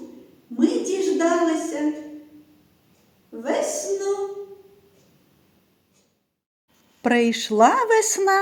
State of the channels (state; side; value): identical; both; correlation 1.00